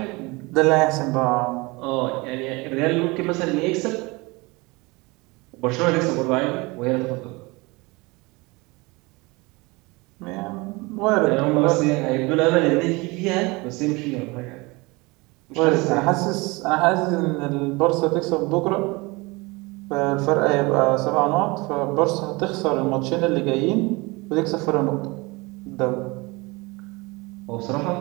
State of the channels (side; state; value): left; quieter; 24.9 dB